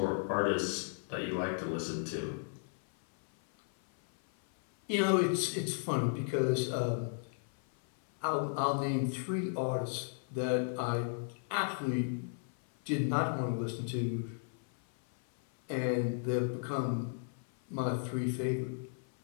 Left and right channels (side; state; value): right; silent; 55 dB below the other